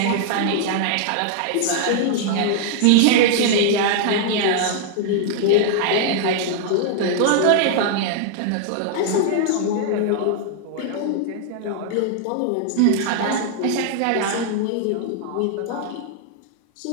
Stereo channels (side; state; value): both; different; correlation -0.01